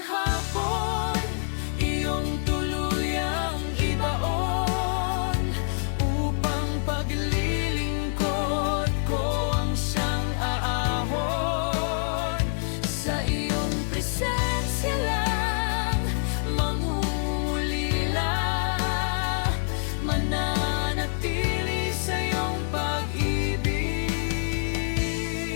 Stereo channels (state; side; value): silent; right; 55 dB below the other